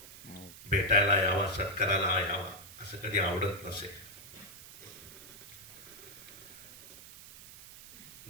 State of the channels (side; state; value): right; noise; hiss, 16 dB below the sound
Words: भेटायला यावा, सत्काराला यावा, असं कधी आवडत नसे.